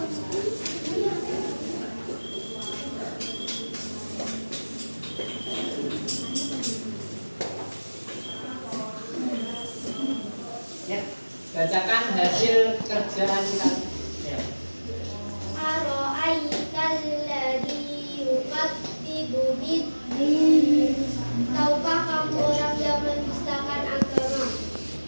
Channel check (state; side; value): inverted; both; correlation -1.00